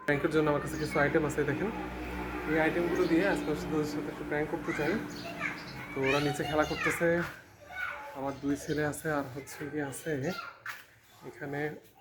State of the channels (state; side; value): identical; both; correlation 1.00